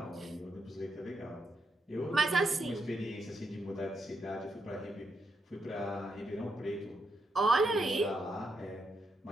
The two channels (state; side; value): normal; both; correlation 0.81